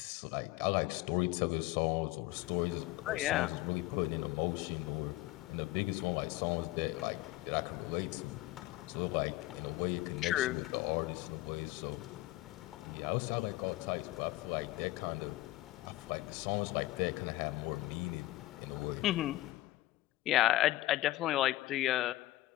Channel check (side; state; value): right; quieter; 17.3 dB